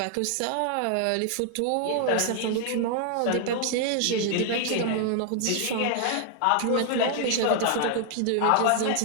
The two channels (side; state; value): both; different; correlation 0.00